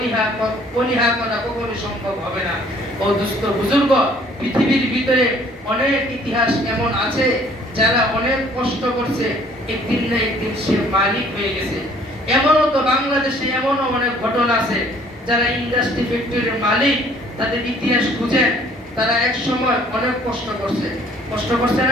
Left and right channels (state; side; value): normal; both; correlation 0.58